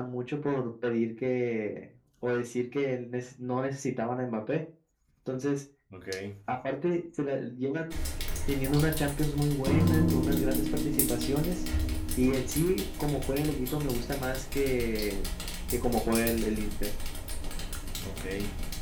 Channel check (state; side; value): identical; both; correlation 1.00